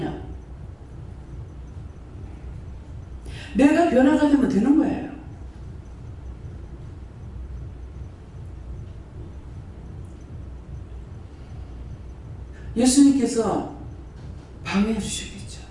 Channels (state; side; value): identical; both; correlation 1.00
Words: 내가 변화가 되면 되는 거예요. 예수님께서 방해해 주시겠죠.